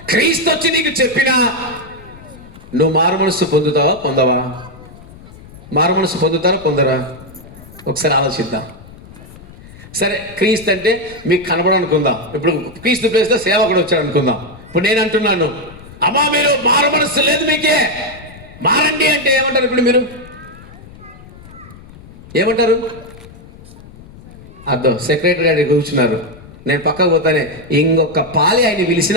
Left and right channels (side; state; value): left; noise; rumble, 19 dB below the sound